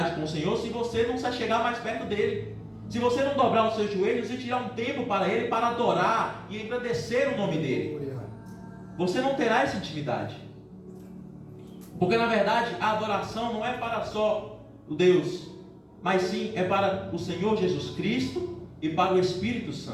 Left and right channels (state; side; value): identical; both; correlation 1.00